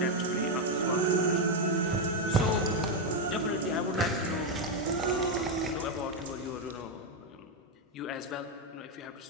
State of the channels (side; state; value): both; normal; correlation 0.04